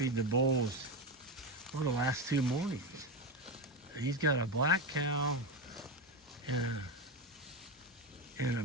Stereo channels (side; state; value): both; normal; correlation 0.15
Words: the bulls for the last 2 mornings. And he's got a black cow and a